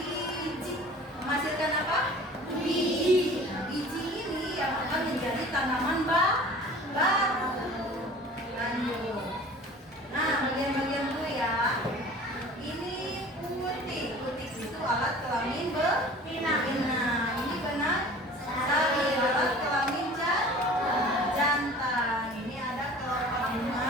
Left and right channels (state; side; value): normal; both; correlation 0.44